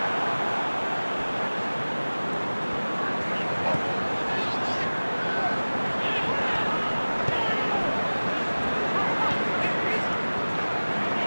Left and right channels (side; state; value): both; inverted; correlation -1.00